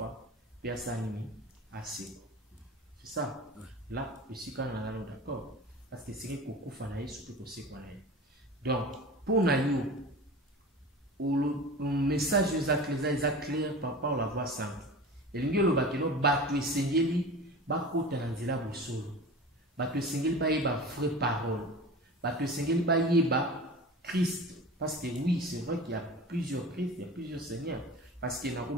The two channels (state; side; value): normal; both; correlation 0.34